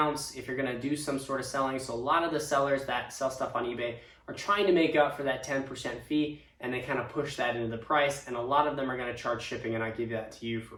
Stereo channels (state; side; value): identical; both; correlation 1.00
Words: if you're going to do some sort of selling. So a lot of the sellers that sell stuff on eBay are trying to make up for that 10% fee, and they kind of push that into the price, and a lot of them are going to charge shipping, and I give that to you for